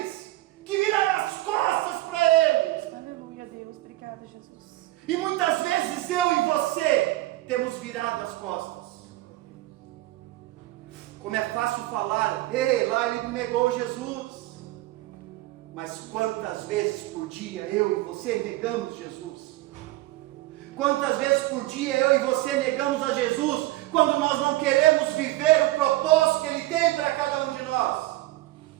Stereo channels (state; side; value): quieter; left; 17.9 dB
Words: que viraram as costas para eles. Aleluia, Deus. Obrigada, Jesus. E muitas vezes eu e você temos virado as costas. Como é fácil falar: ei, lá ele negou Jesus. Mas quantas vezes por dia eu e você negamos Jesus? Quantas vezes por dia eu e você negamos a Jesus, quando nós não queremos viver o propósito que Ele tem para cada um de nós?